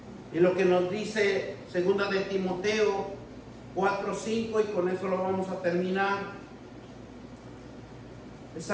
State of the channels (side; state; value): both; identical; correlation 1.00